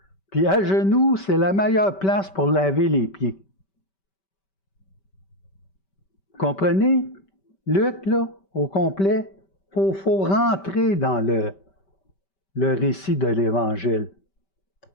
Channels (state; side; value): late; right; 5.2 ms